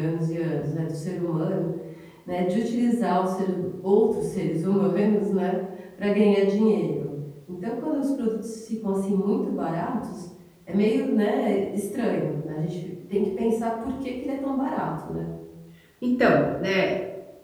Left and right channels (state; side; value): identical; both; correlation 1.00